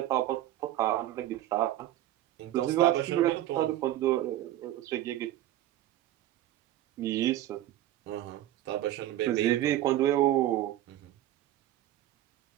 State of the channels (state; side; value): quieter; left; 13.8 dB